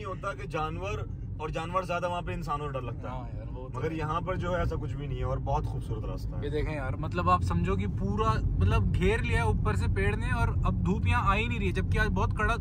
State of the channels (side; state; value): both; identical; correlation 1.00